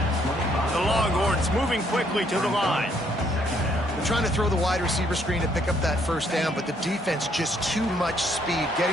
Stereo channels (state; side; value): normal; both; correlation 0.68